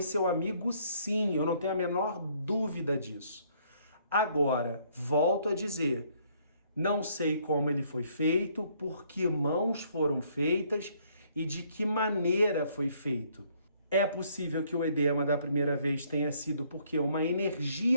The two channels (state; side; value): inverted; both; correlation -0.65